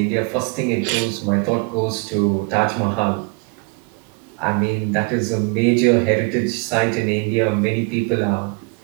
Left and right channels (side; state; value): left; quieter; 29.9 dB